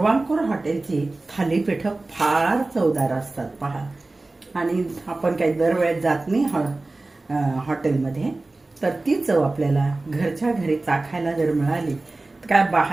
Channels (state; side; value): quieter; left; 3.1 dB